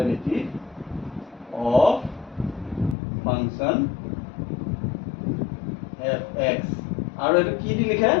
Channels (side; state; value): right; drops out; at 3.0 s